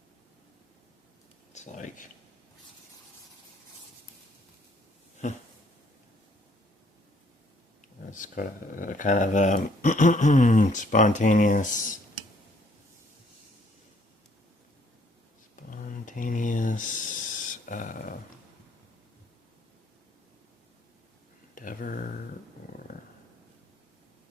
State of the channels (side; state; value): both; normal; correlation 0.64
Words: It's like it's got a kind of a spontaneous endeavor or